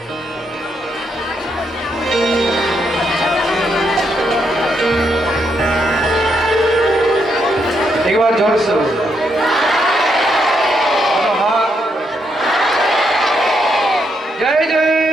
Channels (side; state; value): both; normal; correlation 0.78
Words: একবার জোর से জয় জয়